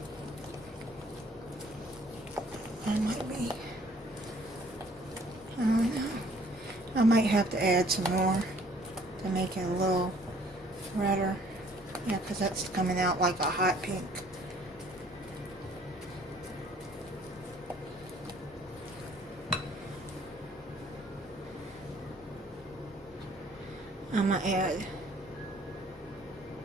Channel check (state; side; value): normal; both; correlation 0.58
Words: I might have to add some more to make it a little redder. Yeah, because that's coming out like a hot pink. I'm going to add